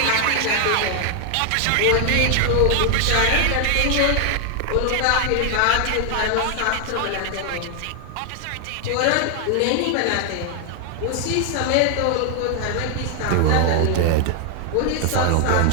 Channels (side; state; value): both; different; correlation 0.00